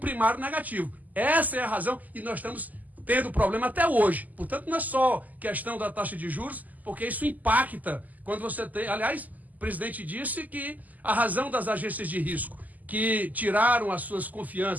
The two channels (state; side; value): late; left; 0.080 ms